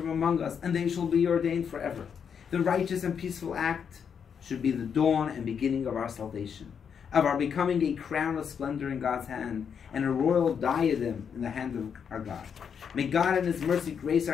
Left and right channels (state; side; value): quieter; right; 7.2 dB